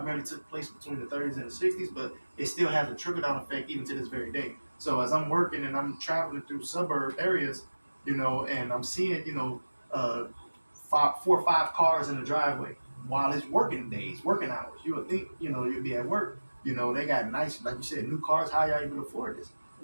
took place between the 30s and the 60s, but it still has a trickle-down effect even to this very day. So as I'm working and I'm traveling through suburb areas, and I'm seeing, 4 or 5 cars in the driveway while it's working days, working hours. You would think, you'd be at work. They got nice, like you said, new cars. How y'all even afford this?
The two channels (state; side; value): inverted; both; correlation -1.00